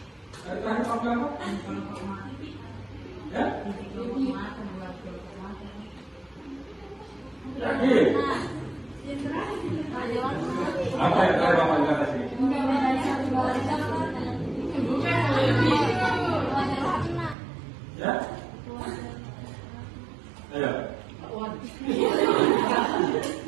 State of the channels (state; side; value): drops out; left; at 17.4 s